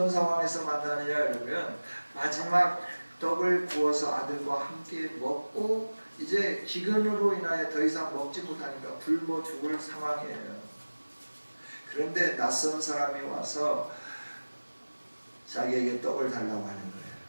상황에서 만나느냐 그러면 마지막 떡을 구워서 아들과 함께 먹고 이제 기근으로 인하여 더 이상 먹지 못하니까 굶어 죽을 상황이에요. 그런데 낯선 사람이 와서 자기에게 떡을 달라고 하는 거예요.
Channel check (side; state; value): both; inverted; correlation -1.00